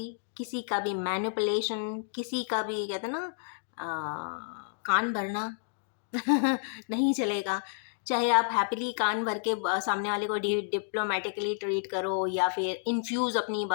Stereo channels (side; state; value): right; silent; digital silence